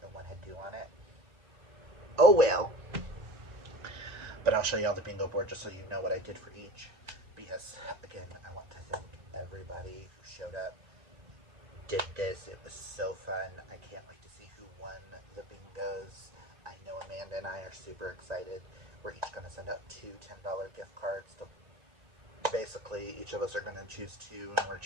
and one had 2 on it. Oh well. But I'll show you all the bingo board just so you know what I did for each. Because, again, I want to thank everybody who showed up, did this. It was so fun. I can't wait to see who won the bingos. I know Amanda and I are super excited. We're each going to send out 2 $10 gift cards. Basically, each of us are going to choose 2, and we're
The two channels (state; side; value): late; left; 1.8 ms